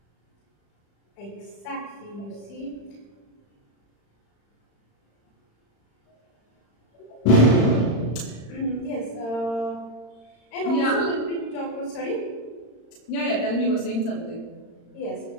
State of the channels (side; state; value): right; late; 35 ms